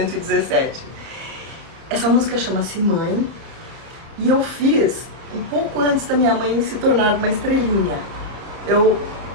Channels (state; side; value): late; left; 30 ms